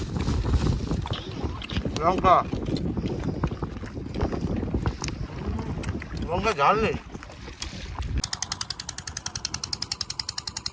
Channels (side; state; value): both; identical; correlation 1.00